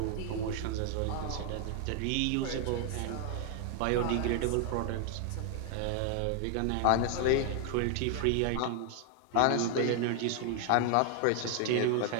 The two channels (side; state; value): both; different; correlation 0.00